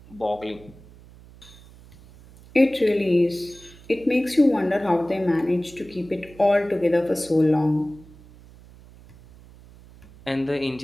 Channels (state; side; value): noise; right; hum, 23 dB below the sound